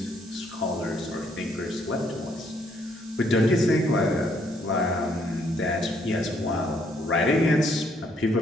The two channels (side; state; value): both; normal; correlation 0.69